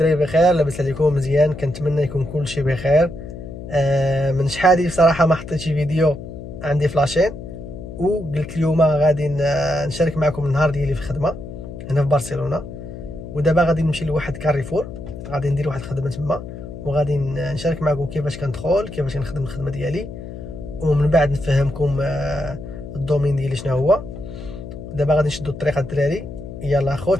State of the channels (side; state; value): left; noise; hum, 11 dB below the sound